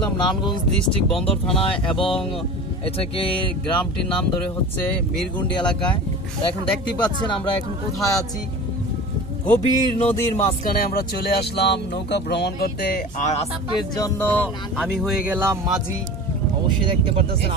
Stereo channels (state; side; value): normal; both; correlation 0.35